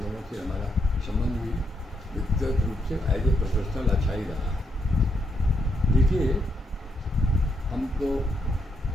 लोगों से हमारा संबंध भी व्यक्तिगत रूप से एज ए प्रोफेशनल अच्छा ही रहा है। देखिए, हमको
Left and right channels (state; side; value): normal; both; correlation 0.79